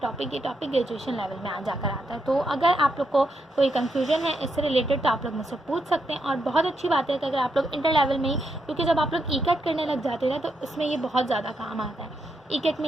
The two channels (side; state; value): both; normal; correlation 0.81